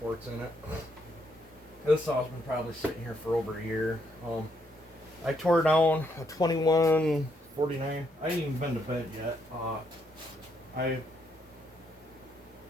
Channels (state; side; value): normal; both; correlation 0.74